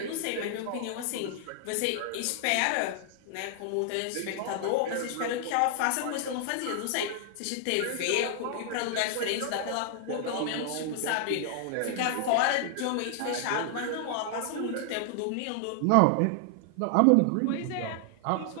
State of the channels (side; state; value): both; different; correlation 0.00